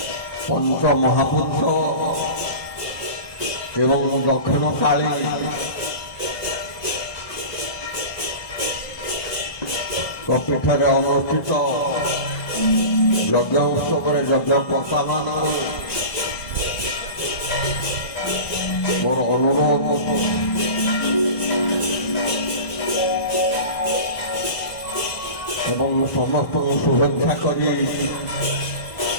ପଞ୍ଚ ମହାପୁରୁଷ ଏବଂ ଦକ୍ଷିଣ କାଳୀ ପୀଠରେ ଅନୁଷ୍ଠିତ ଯଜ୍ଞ ଉତ୍ସବରେ ଯଜ୍ଞ ପ୍ରସାରଣରେ ମୋର ଅନୁରୋଧ ଏବଂ ସମସ୍ତଙ୍କୁ ଶୁଭେଚ୍ଛା କରି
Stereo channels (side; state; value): right; late; 1.5 ms